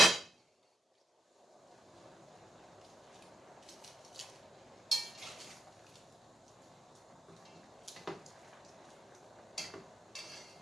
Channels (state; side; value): normal; both; correlation 0.84